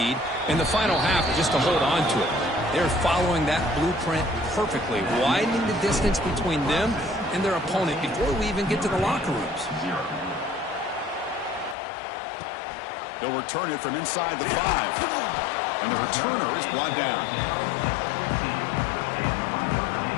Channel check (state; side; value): drops out; right; at 11.8 s